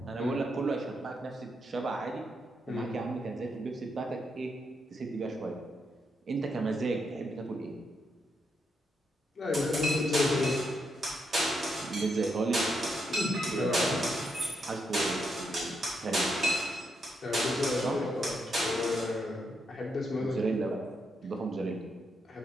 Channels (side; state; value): both; normal; correlation 0.80